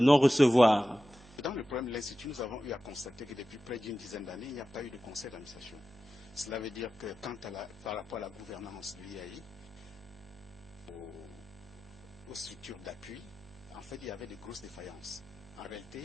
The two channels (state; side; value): noise; right; hum, 22 dB below the sound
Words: Dans le problème de l'Institut, nous avons eu à constater que depuis près d'une dizaine d'années, il n'y a pas eu de conseil d'administration. Cela veut dire que par rapport à la gouvernance de l'IAI, aux structures d'appui, en fait, il y avait de grosses défaillances. En